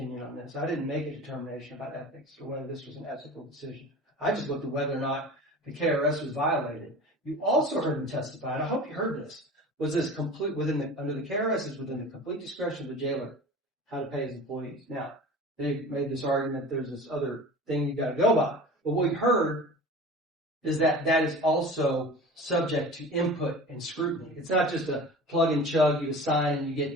on this. I didn't make a determination about ethics or whether this was an ethical decision. I just looked at whether or not the KRS was violated. You also heard him testify, and I hope you heard this, was this complete under the KRS is within the complete discretion of the jailer how to pay his employees. Now, they made this argument there's this other thing you got to go by. But what we heard is that is also subject to input and scrutiny. It's not just a plug and chug, you assign and you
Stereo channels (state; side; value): normal; both; correlation 0.38